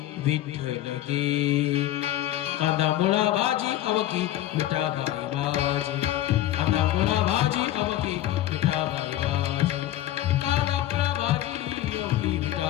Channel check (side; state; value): right; quieter; 13.6 dB